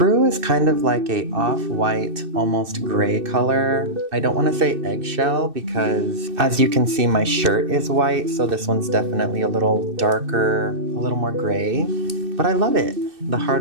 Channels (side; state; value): left; late; 2.6 ms